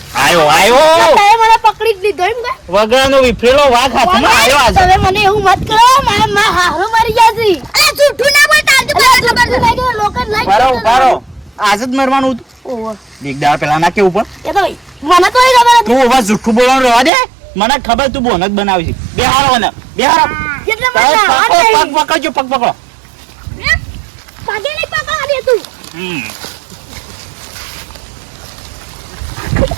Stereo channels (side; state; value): left; drops out; at 17.1 s